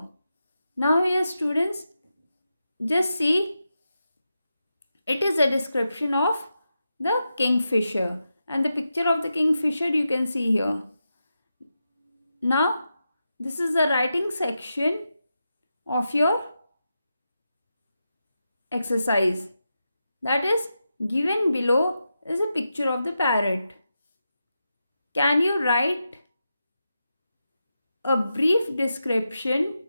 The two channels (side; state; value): both; inverted; correlation -0.88